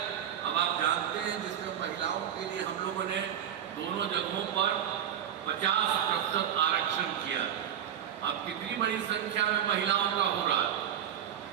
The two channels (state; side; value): quieter; left; 9.9 dB